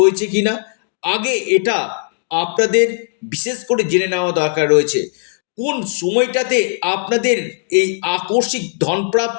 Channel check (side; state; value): right; silent; digital silence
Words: কিনা, আগে এটা আপনাদের বিশেষ করে জেনে নেওয়া দরকার রয়েছে। কোন সময়টাতে আপনাদের এই আকস্মিক